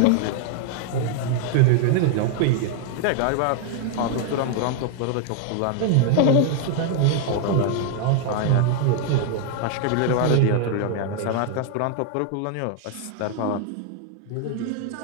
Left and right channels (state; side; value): different; both; correlation 0.00